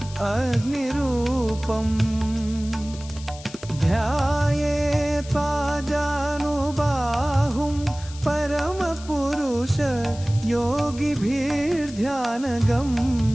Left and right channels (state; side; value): noise; left; hiss, 17 dB below the sound